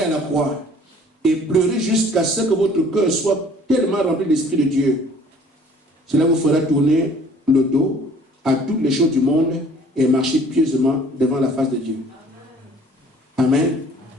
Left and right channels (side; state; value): both; normal; correlation 0.53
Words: à la croix et pleurez jusqu'à ce que votre cœur soit tellement rempli de l'Esprit de Dieu. Cela vous fera tourner le dos à toutes les choses du monde et marcher pieusement devant la face de Dieu. Amen.